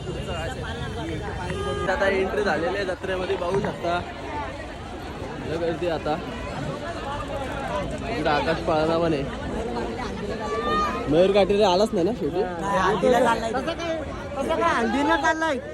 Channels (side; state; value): both; identical; correlation 1.00